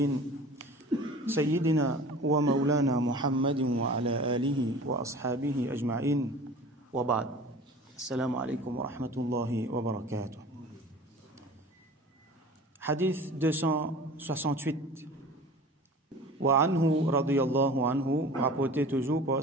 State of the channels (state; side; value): normal; both; correlation 0.41